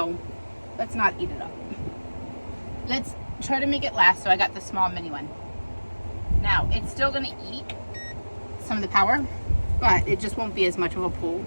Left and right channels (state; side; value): inverted; both; correlation -1.00